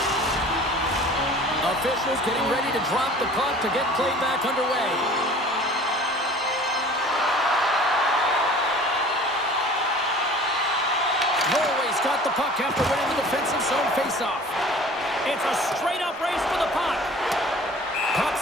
Officials getting ready to drop the puck to get play back underway. Norway's got the puck after winning the defensive zone faceoff. It's a straight-up race for the puck. Puck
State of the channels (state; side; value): normal; both; correlation 0.46